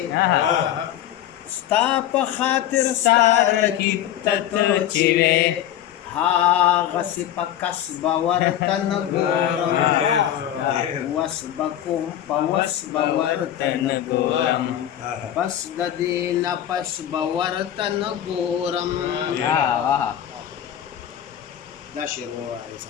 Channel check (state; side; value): quieter; right; 11.4 dB